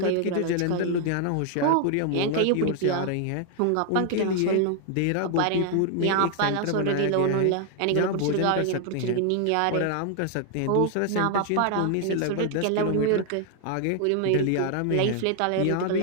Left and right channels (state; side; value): different; both; correlation 0.00